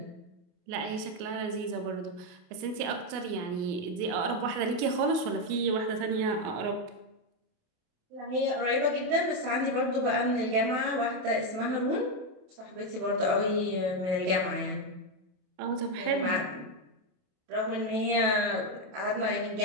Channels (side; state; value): left; late; 28 ms